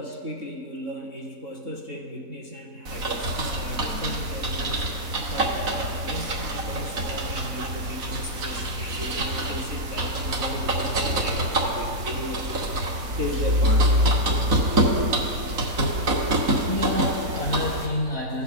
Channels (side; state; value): left; late; 4.0 ms